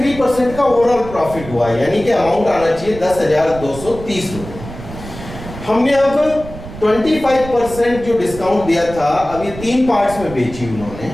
का ओवरऑल प्रॉफिट हुआ, यानी कि अमाउंट आना चाहिए 10,230 रुपए। हमने अब 25% जो डिस्काउंट दिया था, अब ये 3 पार्ट्स में बेची उन्होंने।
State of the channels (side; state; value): right; noise; rumble, 13 dB below the sound